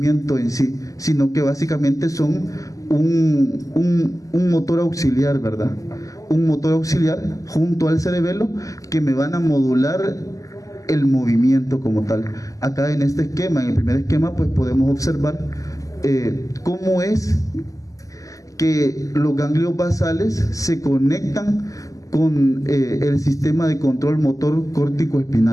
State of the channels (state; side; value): late; right; 0.16 ms